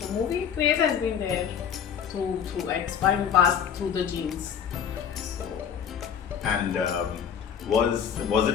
movie craze has been there through it's passed through the genes. So And was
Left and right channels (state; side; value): quieter; right; 8.1 dB